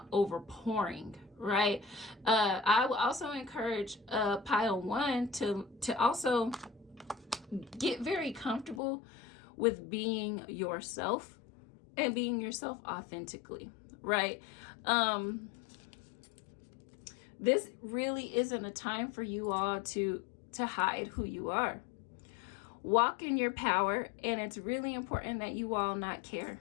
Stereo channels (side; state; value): right; drops out; at 8.8 s